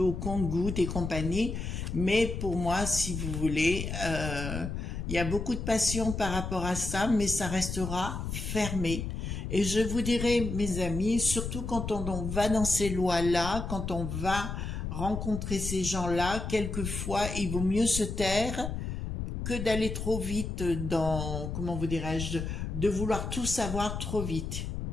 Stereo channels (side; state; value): left; noise; rumble, 5 dB below the sound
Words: compte-gouttes et compagnie. Mais pour moi, si vous voulez, il y a beaucoup de passion par rapport à ça, mais ça restera fermé. Et je vous dirais, mes amis, surtout quand on va dans ces lois-là, quand on va rencontrer ces gens-là, quelquefois, il vaut mieux se taire que d'aller trop vite dans, comment vous dirais-je, de vouloir tout savoir trop vite.